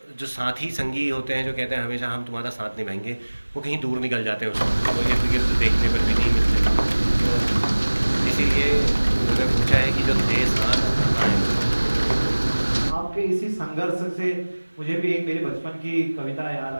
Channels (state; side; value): inverted; both; correlation -1.00